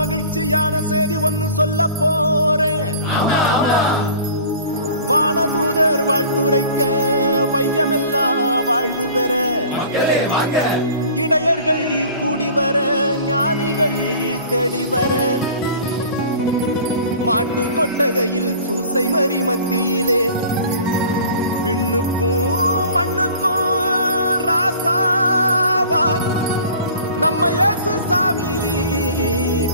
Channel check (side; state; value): both; inverted; correlation -0.45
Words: செய்தி ஒன்னு சொல்ல போறேன். வானதூதர் வாழ்த்துரைக்க வையமெல்லாம் வாழ்வு பெற, இடையர்கள் கூடி வர, ஞானிகள் தேடி வர, மாட்டு கொட்டகையில் சூசை மறி மத்தியிலே விண்ணுக்கும் மண்ணுக்கும் ராசாவா நம்ம இயேசு சாமி